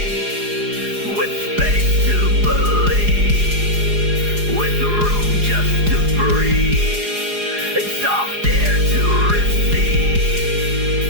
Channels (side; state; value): left; late; 4.8 ms